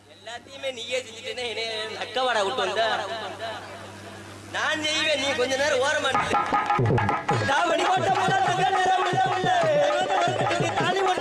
எல்லாத்தையுமே நீயே செஞ்சுட்டேனே. அக்கவாடா விட்டு வந்த நான் செய்வேன். நீ கொஞ்ச நேரம் ஓரமா தாவணி போட்ட உள்ள தங்க நேரம் உள்ள உள்ள தாலி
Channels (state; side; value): identical; both; correlation 1.00